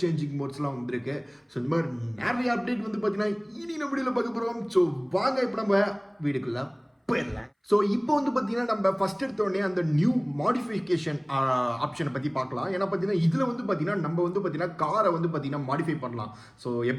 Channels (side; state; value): both; identical; correlation 1.00